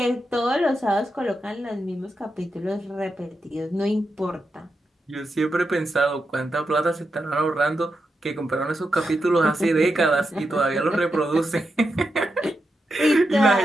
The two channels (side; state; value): both; normal; correlation 0.87